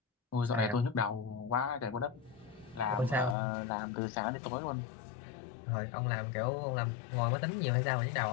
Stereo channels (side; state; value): right; drops out; at 3.4 s